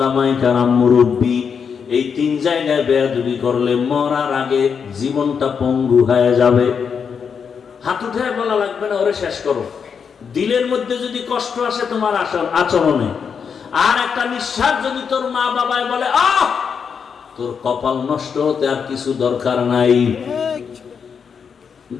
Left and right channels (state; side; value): quieter; right; 6.5 dB